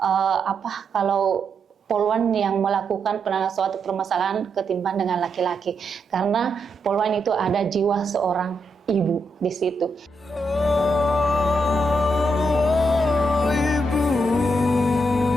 kalau Polwan yang melakukan penanganan suatu permasalahan ketimbang dengan laki-laki, karena Polwan itu ada jiwa seorang ibu di situ. Ibu,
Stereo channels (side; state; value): both; normal; correlation 0.81